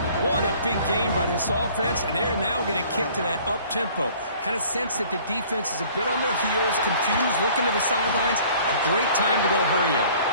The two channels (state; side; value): inverted; both; correlation -0.52